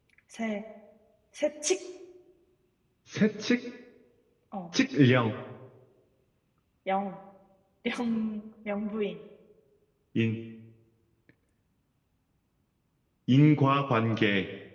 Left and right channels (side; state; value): both; identical; correlation 1.00